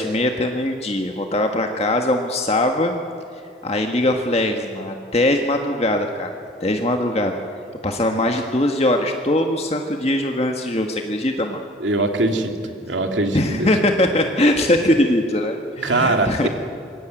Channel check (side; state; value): both; normal; correlation 0.46